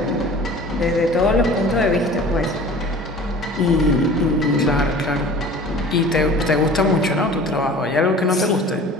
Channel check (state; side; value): normal; both; correlation 0.43